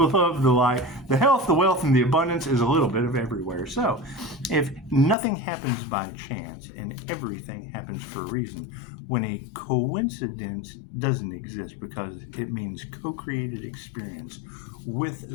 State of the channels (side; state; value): right; drops out; at 5.2 s